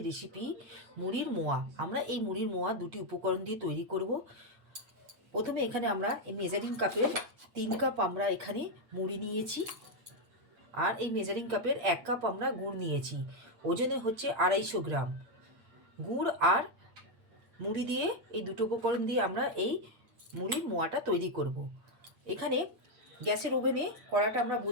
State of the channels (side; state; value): left; late; 8.6 ms